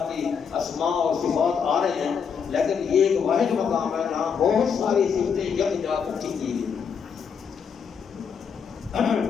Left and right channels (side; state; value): right; quieter; 6.7 dB